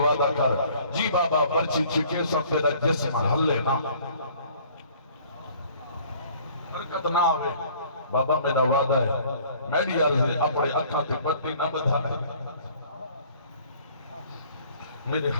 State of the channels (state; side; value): inverted; both; correlation -0.55